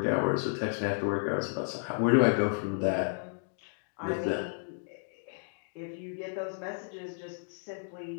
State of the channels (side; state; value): right; silent; digital silence